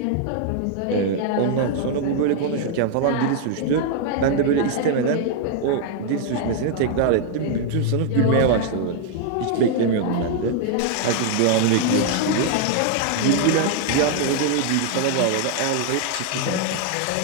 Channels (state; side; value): different; both; correlation 0.00